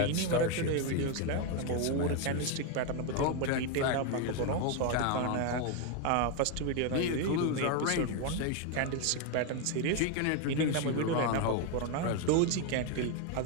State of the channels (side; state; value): both; different; correlation 0.01